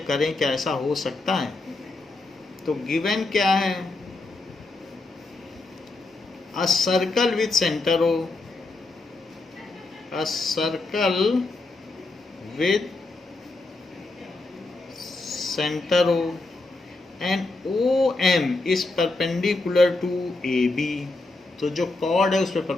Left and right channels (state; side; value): quieter; right; 3.1 dB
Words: करें क्या ऐसा हो सकता है। तो गिवन क्या है? A circle with centre O, a circle with centre O and OM is perpendicular to AB। तो जो कॉर्ड है उस पर